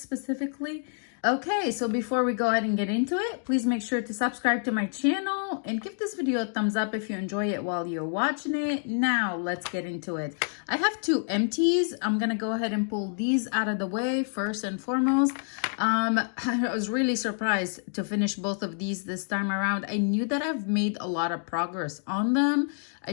Okay, so before we go ahead and get into it, please make sure to subscribe to my channel and give this video a thumbs up if you enjoy it while you're watching it. Now, let's get into it. I have two empties. I'm going to go ahead and pull these out of the way first and foremost. I was really surprised to finish both of these this time around. I knew that I've made a lot of progress on them. I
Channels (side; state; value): right; silent; digital silence